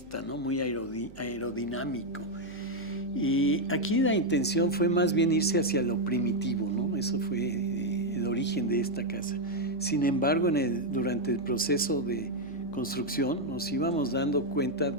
¿no? Muy aerodinámico. Y aquí la intención fue más bien irse hacia lo primitivo, ¿no? Eso fue el origen de esta casa. Sin embargo, durante el proceso de construcción nos íbamos dando cuenta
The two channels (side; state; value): right; noise; hum, 22 dB below the sound